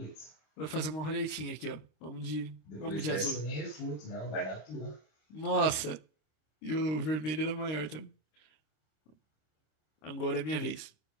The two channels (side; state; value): right; late; 26 ms